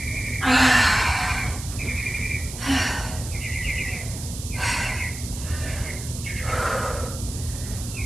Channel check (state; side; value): noise; right; hiss, 10 dB below the sound